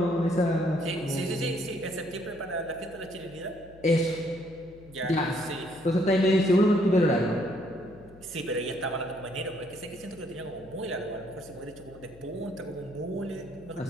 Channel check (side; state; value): left; noise; hum, 22 dB below the sound